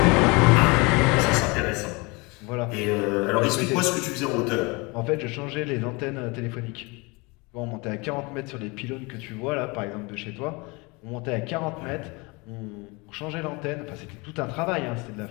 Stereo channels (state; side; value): quieter; right; 27.1 dB